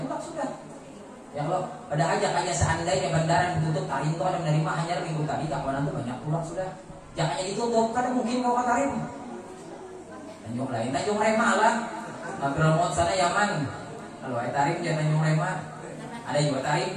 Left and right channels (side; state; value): both; identical; correlation 1.00